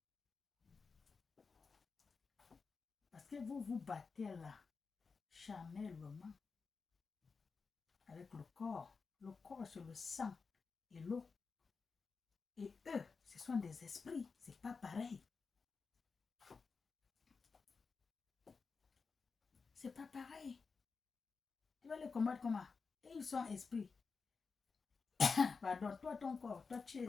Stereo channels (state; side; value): quieter; right; 4.8 dB